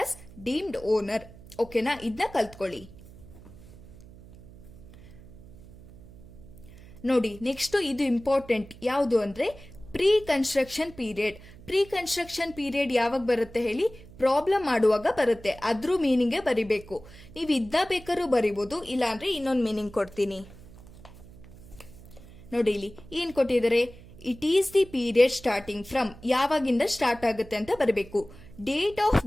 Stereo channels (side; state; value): right; noise; hum, 19 dB below the sound